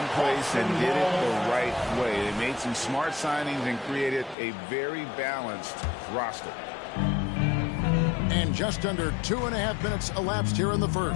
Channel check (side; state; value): right; drops out; at 4.4 s